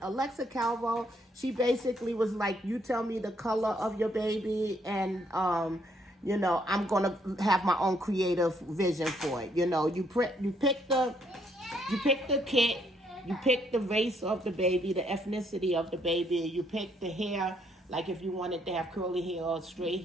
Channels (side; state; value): both; normal; correlation 0.70